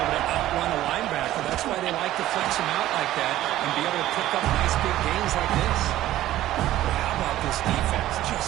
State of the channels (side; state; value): left; quieter; 14.3 dB